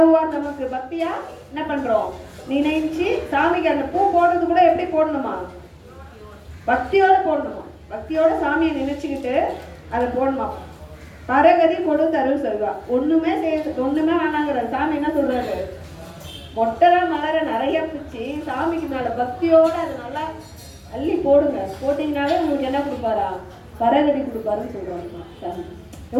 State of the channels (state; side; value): identical; both; correlation 1.00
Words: நமக்கு. பக்தியா என்ன பண்றோம், நினைச்சு சாமிக்கு அந்த பூ போடுறது கூட எப்படி போடணுமா, பக்தியோட போடணுமா. பக்தியோட சாமியை நினைச்சுக்கிட்டு அதை போடணுமா. பரகதி கொடுத்தருள் சொல்வா. ஒண்ணுமே வேணாங்கிற சாமி என்ன சொல்றாரு, மொட்டரா மலரை நிறைய பிச்சு சாமிக்கு மேல பக்தியோட அதை நல்லா அள்ளி போடுங்க. போட்டீங்கன்னாலே உங்களுக்கு என்ன கொடுப்பாரா, பரகதி கொடுப்பாருன்னு சொல்றாங்க சாமி.